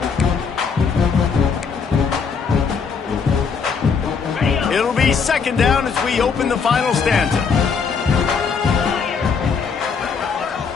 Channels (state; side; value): quieter; right; 5.7 dB